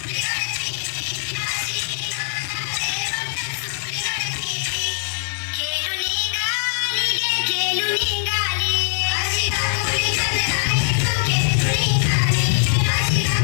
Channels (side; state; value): right; silent; 57 dB below the other